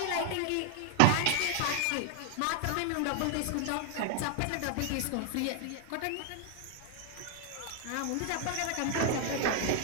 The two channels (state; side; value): different; both; correlation 0.00